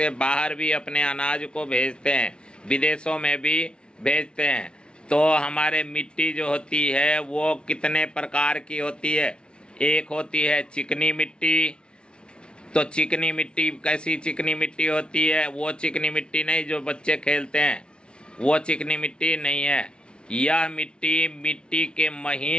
बाहर भी अपने अनाज को भेजते हैं, विदेशों में भी भेजते हैं। तो हमारे मिट्टी जो होती है वो कितने प्रकार की होती है। एक होती है चिकनी मिट्टी। तो चिकनी मिट्टी कैसी चिकनी मिट्टी होती है? वो चिकनी मिट्टी नहीं जो बच्चे खेलते हैं, वो चिकनी मिट्टी नहीं है। यह मिट्टी के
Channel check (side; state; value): right; late; 0.056 ms